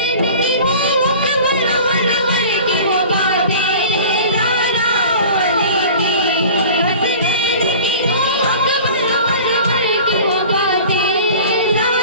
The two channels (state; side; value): inverted; both; correlation -0.41